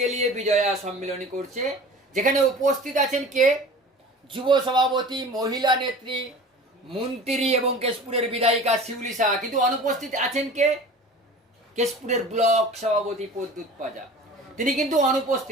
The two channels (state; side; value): normal; both; correlation 0.40